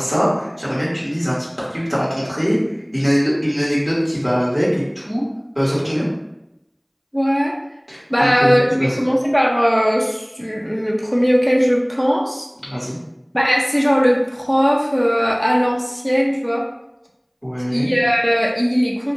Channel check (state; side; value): identical; both; correlation 1.00